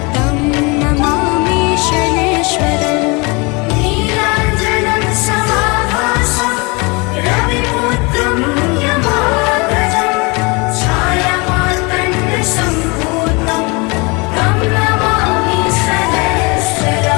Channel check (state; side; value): quieter; right; 28.3 dB